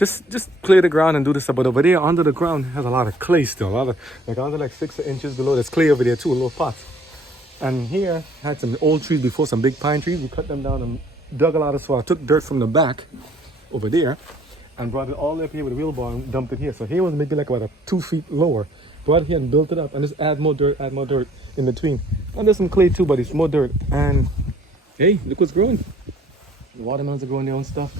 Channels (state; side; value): normal; both; correlation 0.58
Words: clear the ground and do this stuff. But over there under the ground has a lot of clay still. A lot of like 6 inches below. There's clay over there too, a little pots. And here had some old trees before, some big pine trees. We cut them down and dug a lot of soil. I took dirt from the back over there and brought it all the way up here with a wheelbarrow and dumped it here. So here was maybe like about 2 feet lower. Brought it here and built it up and just add more dirt in between. And there's some clay too, but it's more dirt. And hey, look what's growing. The watermelons are growing their own stuff.